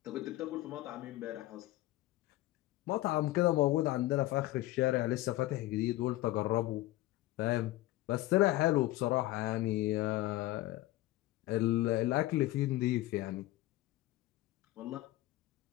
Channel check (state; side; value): quieter; right; 17.0 dB